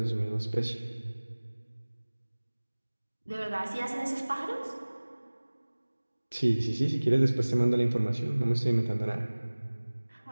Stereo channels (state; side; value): inverted; both; correlation -1.00